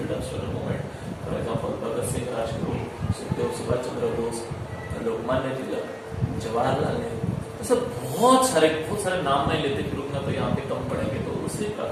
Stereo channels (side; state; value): both; identical; correlation 1.00